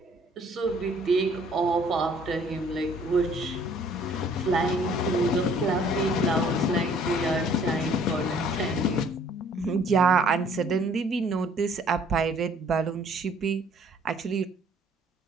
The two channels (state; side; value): normal; both; correlation 0.58